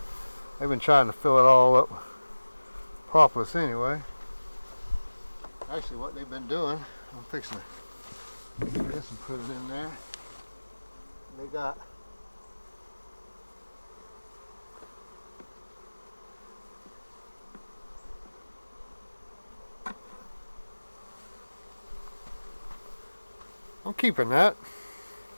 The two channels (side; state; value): both; inverted; correlation -1.00